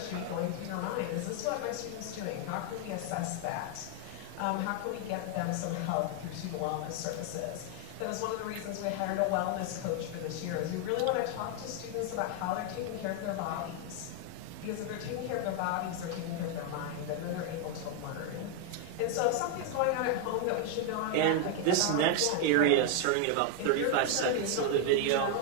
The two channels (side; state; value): both; different; correlation 0.01